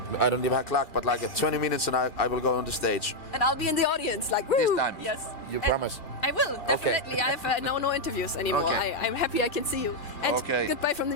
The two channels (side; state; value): right; late; 2.2 ms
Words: I don't even have clock, but like 20 minutes and I will go on the stage. And I'll be in the audience, like, woo! time. Yes. You promise? I will. Okay. Definitely. I have now no interviews anymore. Okay. I'm happy I can see you. And Okay. goodbye from the